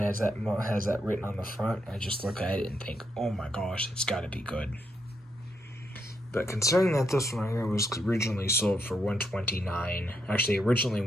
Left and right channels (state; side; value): normal; both; correlation 0.79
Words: that written on the front, I just look at it and think, oh my gosh, it's got to be good. But considering that this one right here was originally sold for $129, actually originally